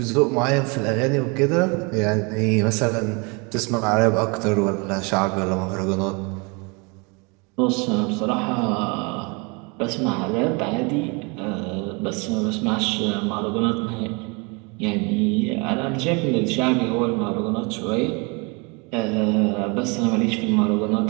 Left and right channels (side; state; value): left; quieter; 30.4 dB